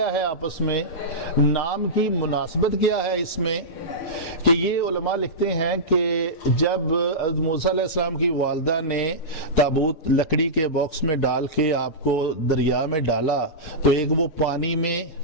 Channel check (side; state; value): right; late; 6.6 ms